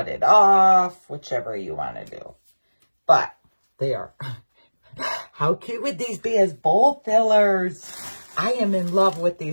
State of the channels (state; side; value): inverted; both; correlation -1.00